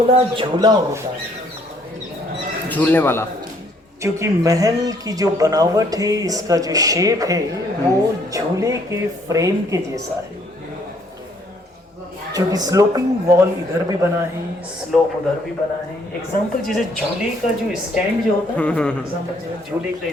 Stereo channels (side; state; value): both; normal; correlation 0.65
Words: झूला होता है, झूलने वाला। क्योंकि महल की जो बनावट है, इसका जो शेप है वो झूले के फ्रेम के जैसा है, क्योंकि स्लोपिंग वॉल इधर भी बना है, स्लोप उधर भी बना है। एग्जाम्पल जैसे झूले का जो स्टैंड जो होता है, एग्जाम्पल जैसे झूले का